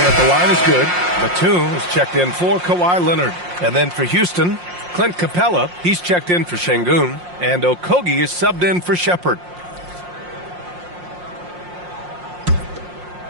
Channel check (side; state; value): left; late; 5.6 ms